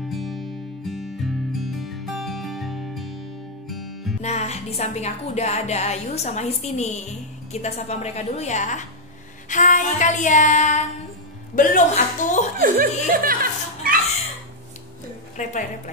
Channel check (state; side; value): normal; both; correlation -0.02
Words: Nah, di samping aku udah ada Ayu sama Histi nih. Kita sapa mereka dulu ya. Hai kalian. Belum atuh.